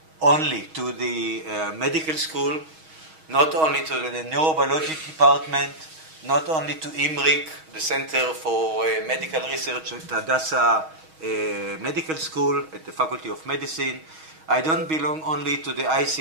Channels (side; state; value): left; late; 6.3 ms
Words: medical school, not only to the neurobiology department, not only to IMRIC, the Center for Medical Research at Hadassah Medical School at the Faculty of Medicine. I don't belong only to the